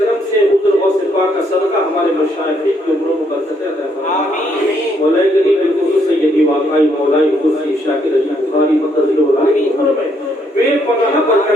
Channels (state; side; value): normal; both; correlation 0.72